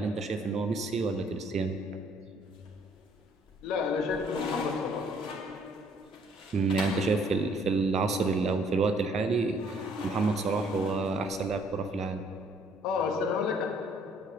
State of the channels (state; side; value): normal; both; correlation 0.62